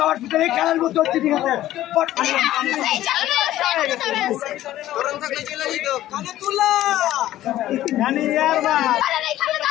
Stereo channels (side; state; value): right; quieter; 14.0 dB